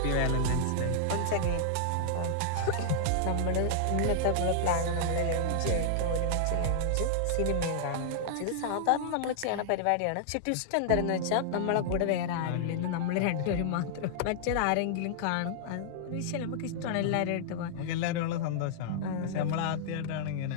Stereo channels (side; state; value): both; different; correlation -0.01